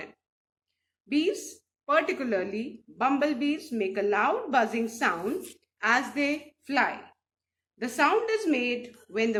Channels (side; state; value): both; identical; correlation 1.00